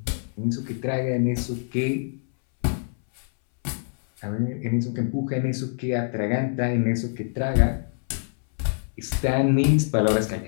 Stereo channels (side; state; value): right; silent; 62 dB below the other